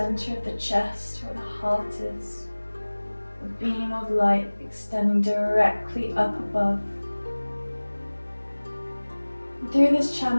of the chest where the heart is, a beam of light extending directly up above. Through this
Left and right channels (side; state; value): both; inverted; correlation -1.00